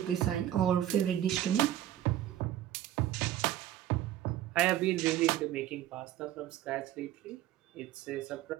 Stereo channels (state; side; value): quieter; left; 12.5 dB